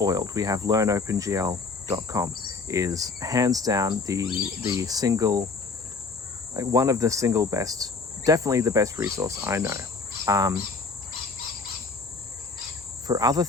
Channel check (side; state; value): right; quieter; 4.2 dB